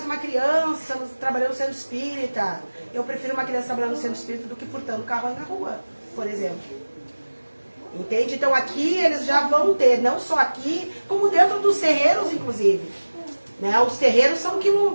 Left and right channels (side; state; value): both; inverted; correlation -1.00